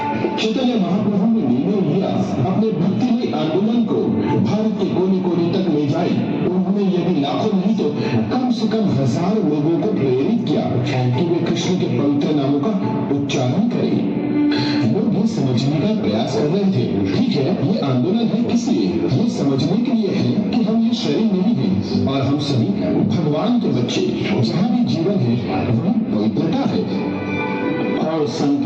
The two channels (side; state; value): both; identical; correlation 1.00